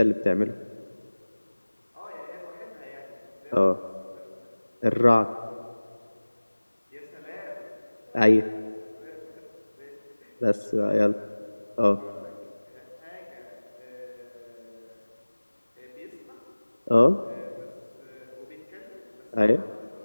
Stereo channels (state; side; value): inverted; both; correlation -1.00